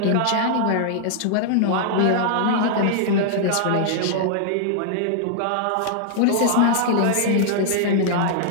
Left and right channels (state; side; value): different; both; correlation -0.01